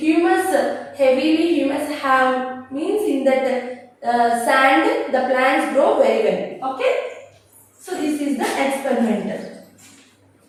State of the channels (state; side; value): identical; both; correlation 1.00